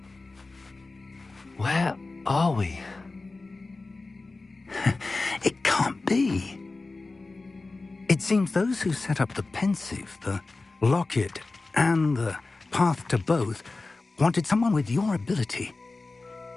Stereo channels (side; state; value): right; quieter; 3.5 dB